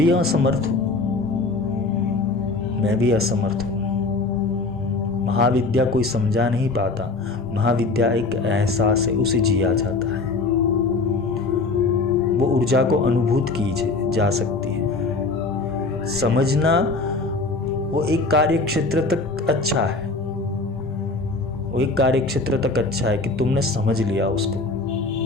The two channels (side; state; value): right; quieter; 3.6 dB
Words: असमर्थ हूँ। महाविद्या कोई समझा नहीं पाता। महाविद्या एक एहसास है, उसे जिया जाता है। वो ऊर्जा को अनुभूत की जा सकती है। समझना वो एक कार्य क्षेत्र तक अच्छा है, कि तुमने समझ लिया उसको,